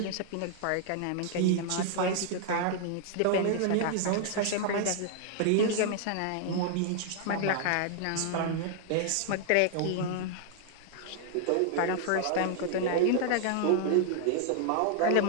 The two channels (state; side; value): different; both; correlation 0.00